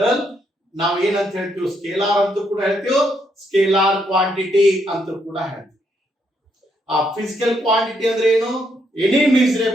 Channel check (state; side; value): normal; both; correlation 0.75